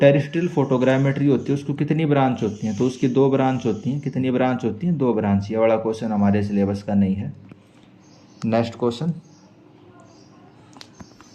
फोटोग्रामेट्री होती है उसको कितनी ब्रांच होती हैं, तो उसकी 2 ब्रांच होती हैं। कितनी ब्रांच होती हैं? 2 ब्रांच। ये वाला क्वेश्चन हमारे सिलेबस का नहीं है। Next question,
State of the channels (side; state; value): both; identical; correlation 1.00